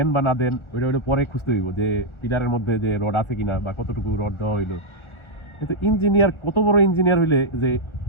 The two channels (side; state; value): right; late; 1.4 ms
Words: বা না দেন ওইটা ওইটা পরে খুঁজতে হইব যে পিলারের মধ্যে যে রড আছে কিনা বা কতটুকু রড দেওয়া হইলো। কিন্তু ইঞ্জিনিয়ার কত বড় ইঞ্জিনিয়ার হইলে যে